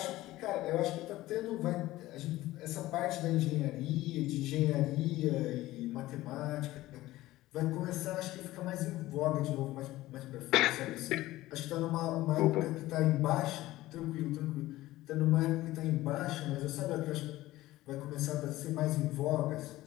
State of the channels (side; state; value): right; quieter; 16.8 dB